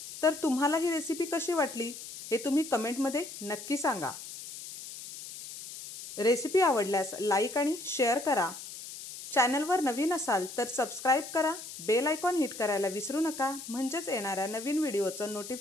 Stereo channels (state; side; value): noise; left; hiss, 12 dB below the sound